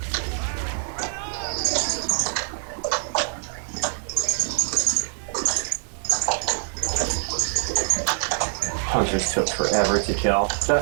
Hunters took forever to kill.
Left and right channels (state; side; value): silent; left; 62 dB below the other